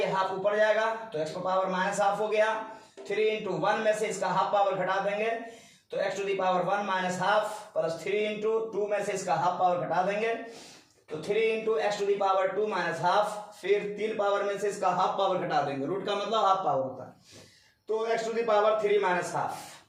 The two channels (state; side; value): identical; both; correlation 1.00